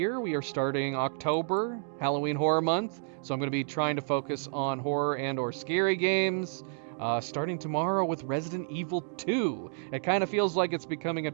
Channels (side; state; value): left; silent; digital silence